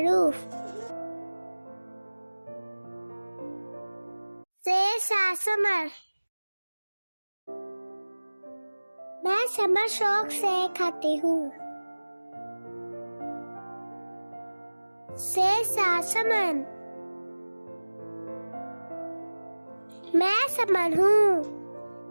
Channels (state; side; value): inverted; both; correlation -1.00